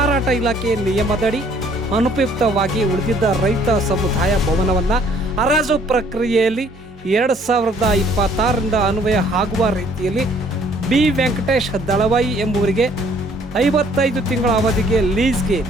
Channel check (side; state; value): both; normal; correlation 0.60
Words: ಇಲಾಖೆ ನಿಯಮದಡಿ ಅನುಪಯುಕ್ತವಾಗಿ ಉಳಿದಿದ್ದ ರೈತ ಸಮುದಾಯ ಭವನವನ್ನು ಹರಾಜು ಪ್ರಕ್ರಿಯೆಯಲ್ಲಿ 2026ರಿಂದ ಅನ್ವಯ ಆಗುವ ರೀತಿಯಲ್ಲಿ ಬಿ ವೆಂಕಟೇಶ್ ದಳವಾಯಿ ಎಂಬುವರಿಗೆ 55 ತಿಂಗಳ ಅವಧಿಗೆ ಲೀಸ್ಗೆ